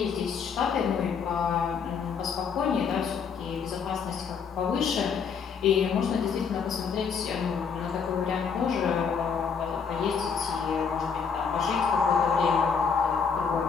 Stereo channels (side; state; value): right; quieter; 6.2 dB